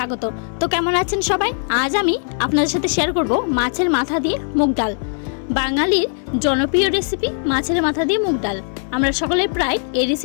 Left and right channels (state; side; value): silent; right; 66 dB below the other